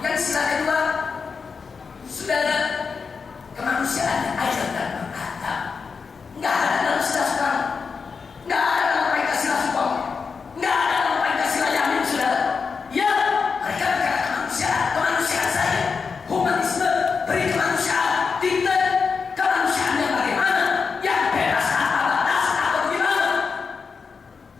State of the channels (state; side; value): quieter; right; 5.3 dB